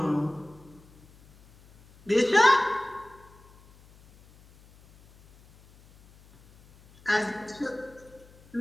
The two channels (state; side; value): noise; left; hum, 26 dB below the sound